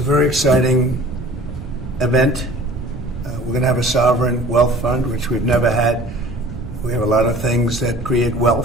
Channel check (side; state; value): right; noise; rumble, 11 dB below the sound